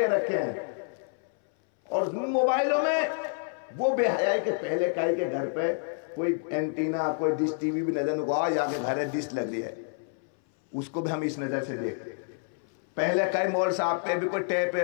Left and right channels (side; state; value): right; silent; 59 dB below the other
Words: رکھے ہیں, اور موبائلوں میں وہ بے حیائی کے پہلے کائی کے گھر پہ کوئی اینٹینا, کوئی ڈش ٹی وی بھی نظر نہ آ, یا گھر ہے ڈش لگ رہی ہے, اس کو بھی ہم اس نظر سے دیکھتے. پہلے کئی مول صاحب پہ بھی کوئی ٹیپ